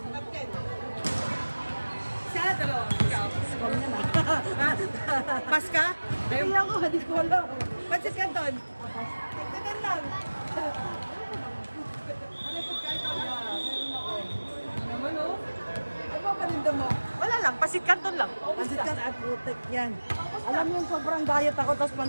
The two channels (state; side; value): inverted; both; correlation -1.00